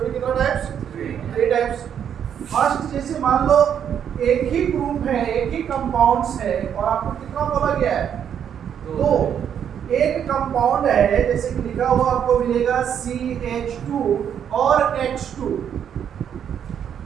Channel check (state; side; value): quieter; left; 8.7 dB